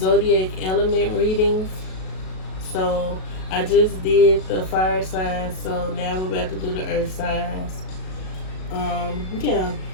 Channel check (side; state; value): right; late; 37 ms